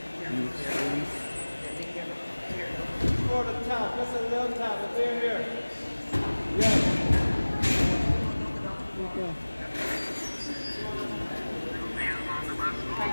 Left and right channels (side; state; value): both; inverted; correlation -1.00